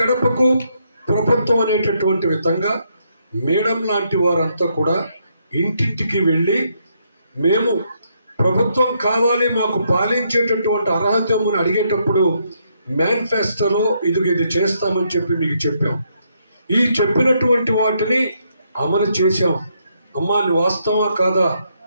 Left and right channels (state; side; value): inverted; both; correlation -0.75